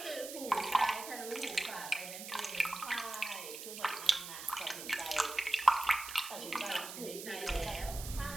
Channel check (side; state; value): right; noise; hiss, 9 dB below the sound